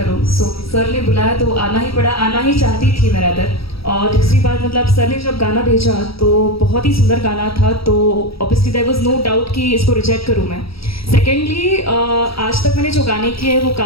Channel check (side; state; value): right; late; 0.76 ms